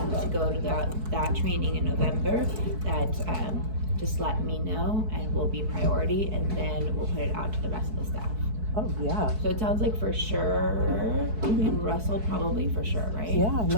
to go to that training in November, that just let me know and we'll be priority, and then we'll put it out to the rest of the staff. Oh, yeah. So it sounds like for sure, and Russell probably for sure, right? Yeah,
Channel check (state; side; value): late; left; 4.6 ms